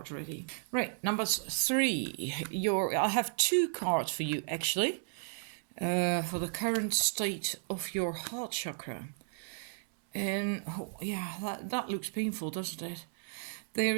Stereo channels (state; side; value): silent; left; 55 dB below the other